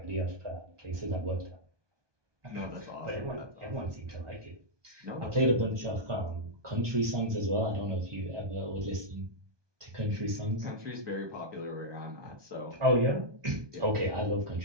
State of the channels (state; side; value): late; left; 1.2 ms